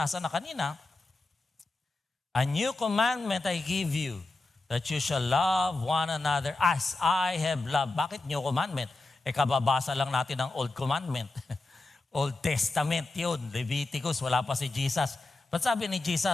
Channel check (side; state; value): right; quieter; 3.1 dB